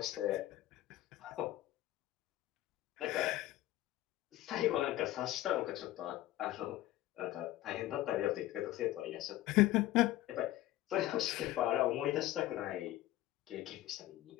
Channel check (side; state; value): right; quieter; 15.5 dB